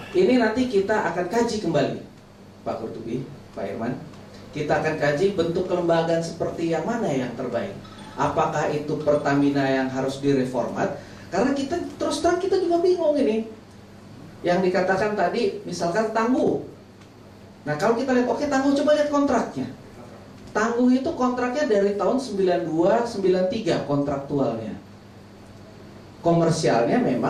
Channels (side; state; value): both; identical; correlation 1.00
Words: ini nanti kita akan kaji kembali. Pak Kurtubi, Pak Irman, kita akan kaji bentuk kelembagaan seperti yang mana yang terbaik. Apakah itu Pertamina yang harus direformat? Karena kita terus terang kita juga bingung ini. Yang dikatakan tadi, misalkan tangguh. Nah, kalau kita lihat, oke, tangguh, coba lihat kontraknya. Tangguh itu kontraknya dari tahun 92-93 kontraktualnya. Komersialnya